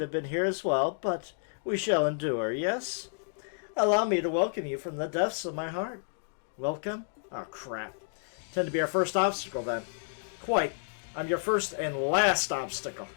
have been here as well, but we shall endure, yes? Allow me to welcome you from the depths of my heart. Welcome? Oh, crap. Tend to be our first obstacle, then. Quite. I'm your first and last obstacle.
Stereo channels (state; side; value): silent; right; digital silence